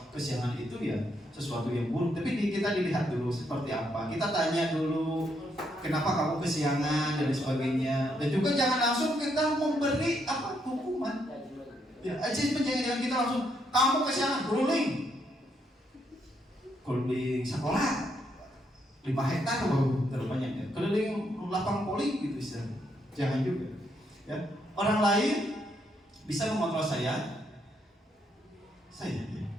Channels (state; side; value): normal; both; correlation 0.76